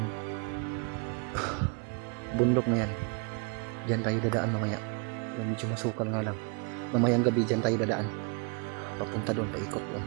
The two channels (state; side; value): quieter; left; 34.3 dB